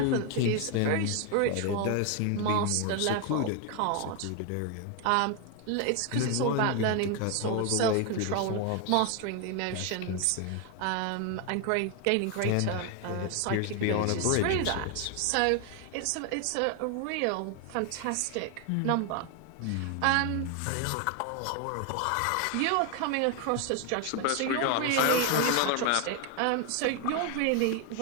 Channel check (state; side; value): different; both; correlation 0.01